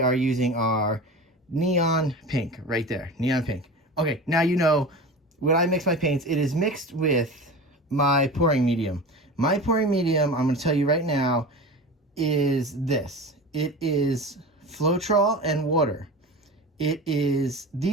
are using our neon pink right there, neon pink. Okay, now you know when I mix my paints, it is mixed with my pouring medium. My pouring medium, I'm going to tell you right now, is this. It is Floetrol and water.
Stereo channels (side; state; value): both; normal; correlation 0.31